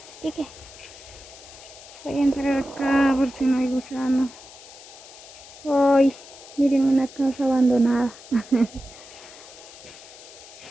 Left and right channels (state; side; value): noise; left; hiss, 18 dB below the sound